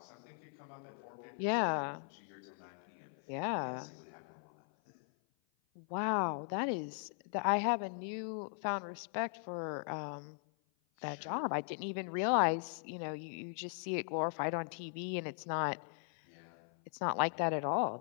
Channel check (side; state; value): right; silent; 52 dB below the other